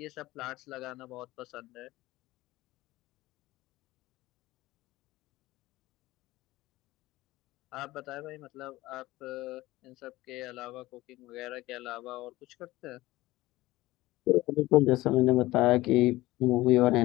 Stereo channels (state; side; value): quieter; right; 18.1 dB